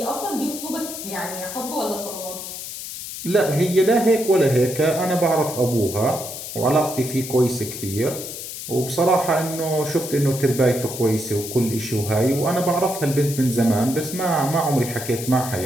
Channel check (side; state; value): left; noise; hiss, 9 dB below the sound